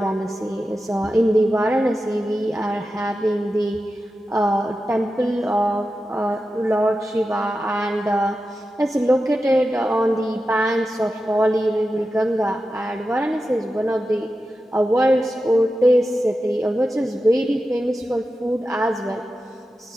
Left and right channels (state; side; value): normal; both; correlation 0.92